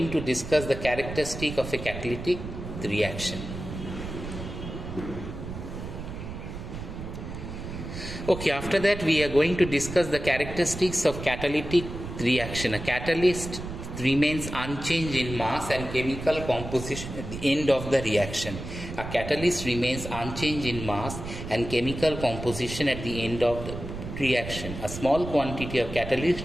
to discuss the characteristic of a catalytic reaction. Okay, after that we are going to discuss the characteristics of catalytic reaction. A catalyst remains unchanged in mass and chemical composition at the end of the reaction. A catalyst remains unchanged in mass and chemical composition at the end of the reaction. A small quantity of catalyst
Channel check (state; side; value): noise; right; rumble, 9 dB below the sound